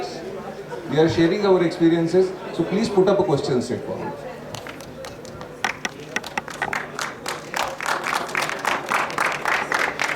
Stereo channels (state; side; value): identical; both; correlation 1.00